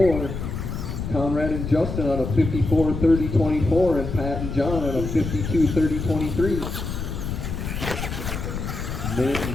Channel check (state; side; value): noise; left; rumble, 5 dB below the sound